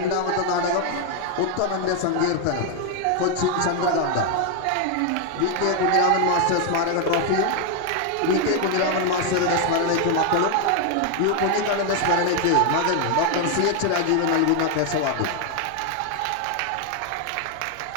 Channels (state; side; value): different; both; correlation 0.01